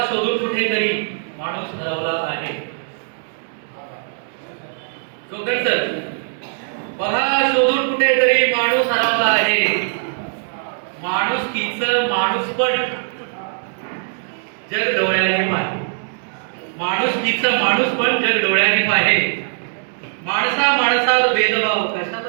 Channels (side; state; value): left; silent; digital silence